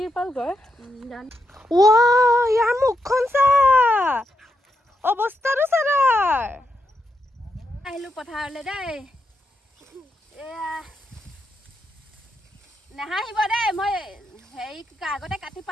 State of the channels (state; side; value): normal; both; correlation 0.82